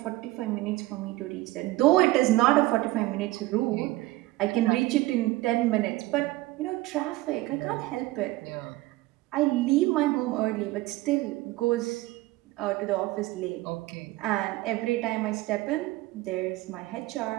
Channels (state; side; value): quieter; left; 18.6 dB